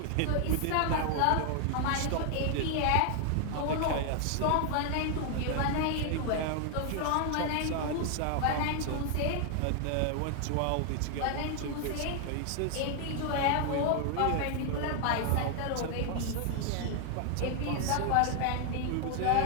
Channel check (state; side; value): different; both; correlation 0.00